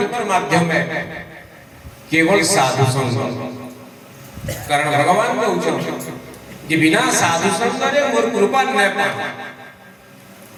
ମାଧ୍ୟମ केवल साधु संग कारण भगवान कहउछन कि बिना साधु संग रे मोर कृपा न पा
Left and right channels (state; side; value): identical; both; correlation 1.00